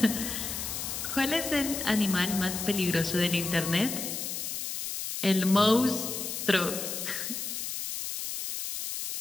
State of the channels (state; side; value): noise; left; hiss, 4 dB below the sound